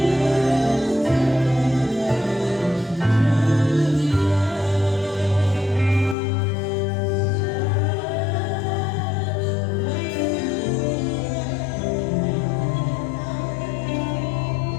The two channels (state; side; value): drops out; right; at 6.2 s